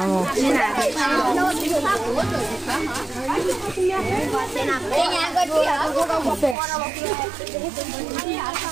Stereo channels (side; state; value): left; drops out; at 6.6 s